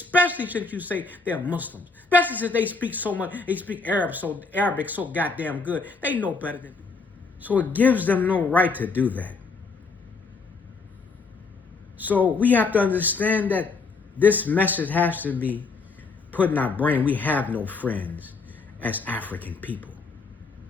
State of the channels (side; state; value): right; quieter; 4.3 dB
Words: since you say they're Muslims. Especially since they speak so much, they speak Arabic so goddamn good. They know better than. So it gives them no right to do that. So we have to understand that this message has to be put in our brain. We have no friends as African people.